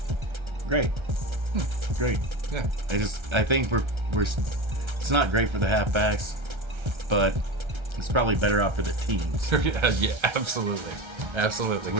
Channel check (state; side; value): late; left; 1.3 ms